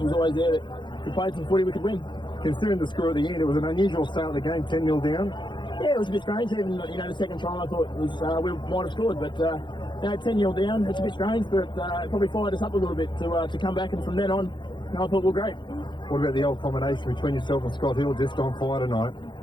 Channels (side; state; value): right; late; 0.23 ms